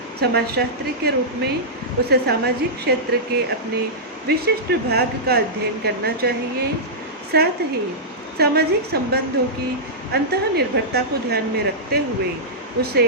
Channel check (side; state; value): both; normal; correlation -0.13